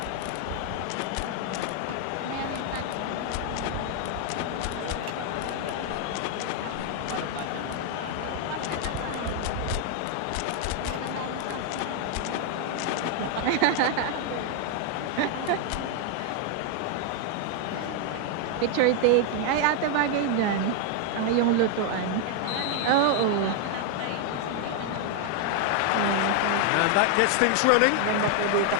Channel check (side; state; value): both; different; correlation 0.00